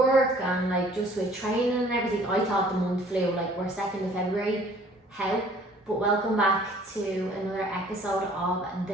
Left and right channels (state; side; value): normal; both; correlation 0.54